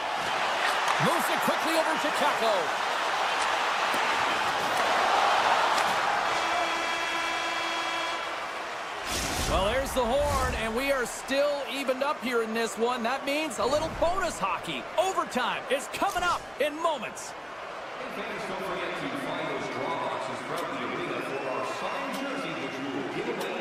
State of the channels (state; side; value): identical; both; correlation 1.00